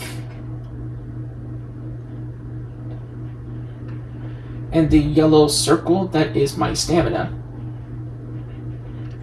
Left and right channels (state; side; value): identical; both; correlation 1.00